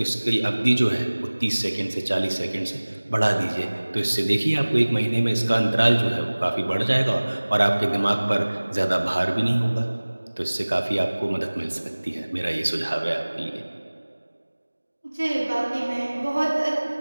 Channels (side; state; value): both; inverted; correlation -1.00